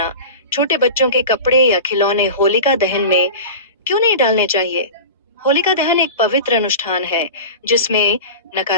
छोटे बच्चों के कपड़े या खिलौने होलिका दहन में क्यों नहीं डालने चाहिए? होलिका दहन एक पवित्र अनुष्ठान है जिसमें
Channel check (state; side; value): inverted; both; correlation -0.32